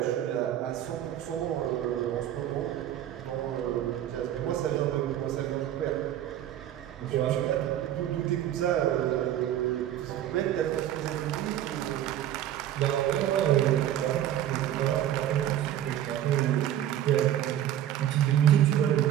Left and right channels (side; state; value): left; quieter; 11.6 dB